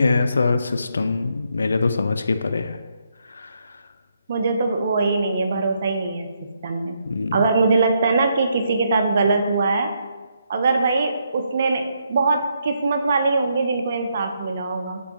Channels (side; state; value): both; inverted; correlation -0.77